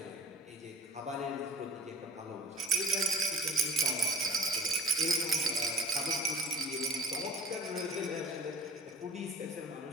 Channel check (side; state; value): both; normal; correlation 0.47